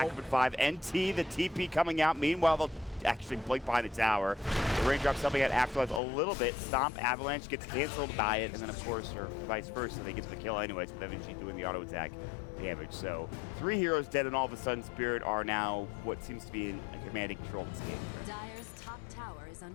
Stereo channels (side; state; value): right; drops out; at 6.0 s